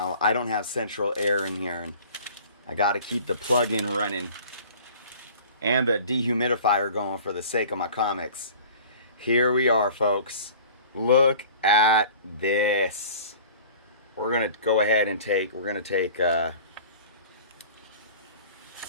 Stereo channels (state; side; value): inverted; both; correlation -0.45